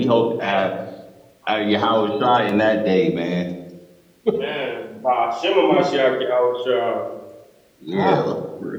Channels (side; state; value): both; identical; correlation 1.00